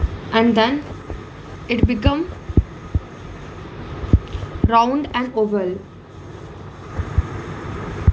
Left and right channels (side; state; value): both; identical; correlation 1.00